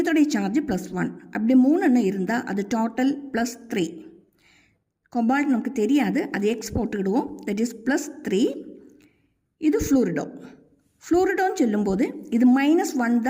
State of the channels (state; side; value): identical; both; correlation 1.00